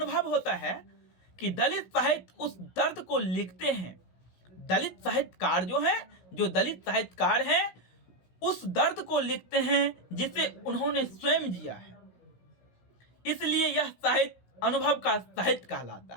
होता है कि दलित साहित्य उस दर्द को लिखते हैं। दलित साहित्यकार जो दलित साहित्यकार हैं उस दर्द को लिखते हैं जिसे उन्होंने स्वयं जिया है। इसलिए यह साहित्य अनुभव का साहित्य कहलाता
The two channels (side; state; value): right; late; 16 ms